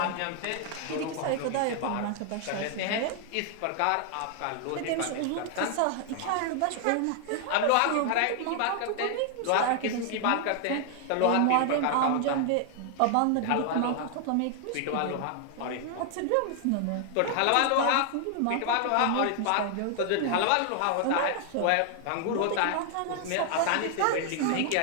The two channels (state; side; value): different; both; correlation 0.00